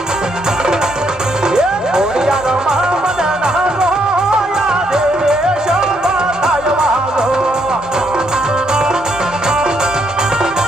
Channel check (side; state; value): both; normal; correlation 0.74